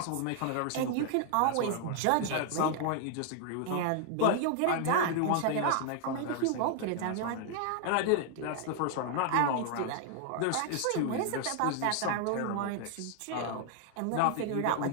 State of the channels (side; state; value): both; different; correlation 0.00